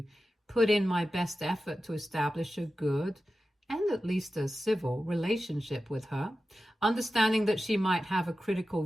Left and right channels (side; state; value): both; normal; correlation 0.93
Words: put in my best effort to establish a good and at least a civil relationship with her, understanding that she might have a critical